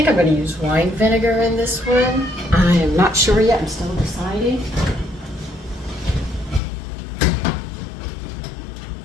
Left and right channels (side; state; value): right; drops out; at 6.6 s